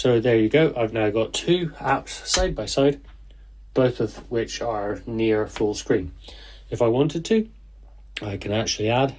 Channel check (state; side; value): identical; both; correlation 1.00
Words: there you go, I've now got 2 apps side by side, both of which are near full screen. If I wanted to, I can actually add